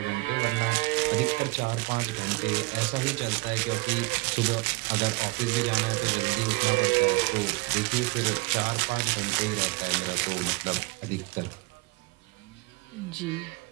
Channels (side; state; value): left; quieter; 24.0 dB